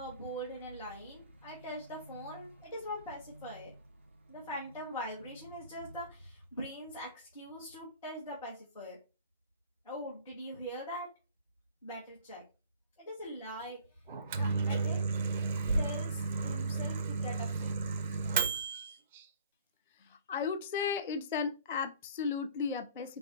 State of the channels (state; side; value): inverted; both; correlation -0.51